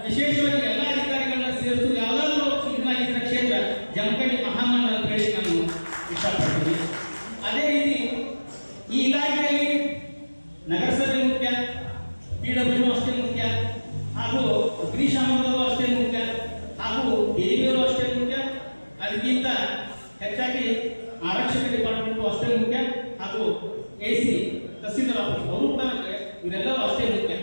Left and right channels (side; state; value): both; inverted; correlation -1.00